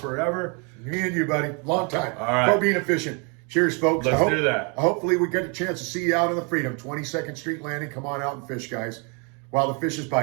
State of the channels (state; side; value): quieter; left; 34.4 dB